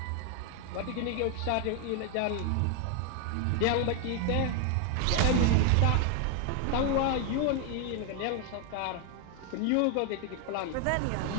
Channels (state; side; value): different; both; correlation 0.00